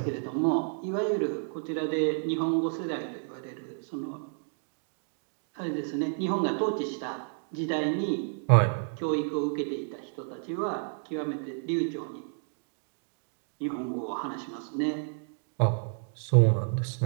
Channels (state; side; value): silent; left; digital silence